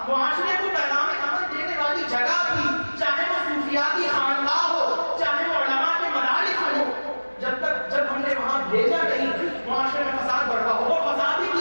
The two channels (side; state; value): both; inverted; correlation -1.00